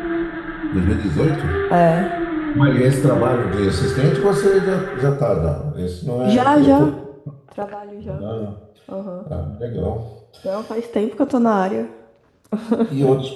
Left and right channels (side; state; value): both; identical; correlation 1.00